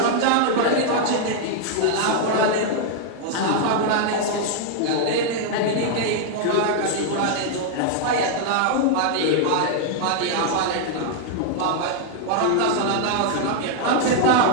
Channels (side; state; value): both; different; correlation 0.00